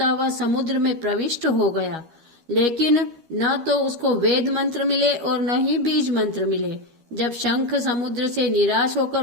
हुआ समुद्र में प्रविष्ट हो गया, लेकिन न तो उसको वेद मंत्र मिले और न ही बीज मंत्र मिले। जब शंख समुद्र से निराश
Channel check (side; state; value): left; late; 12 ms